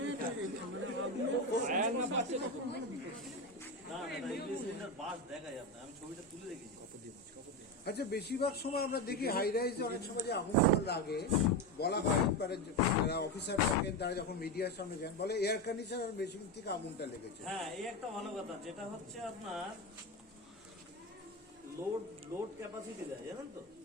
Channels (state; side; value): normal; both; correlation 0.16